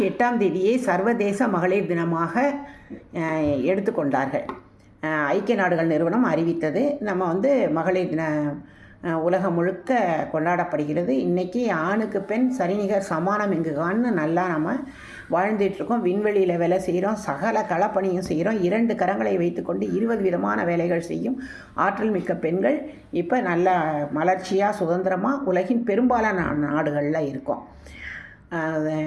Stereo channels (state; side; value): identical; both; correlation 1.00